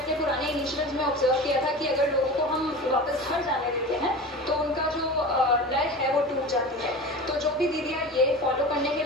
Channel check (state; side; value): normal; both; correlation 0.32